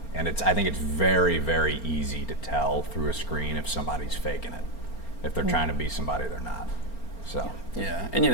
And I think it's very, very easy to tell through a screen if somebody's faking it. If they're trying to be somebody they're not. So. Yeah, and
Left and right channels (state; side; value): late; right; 4.4 ms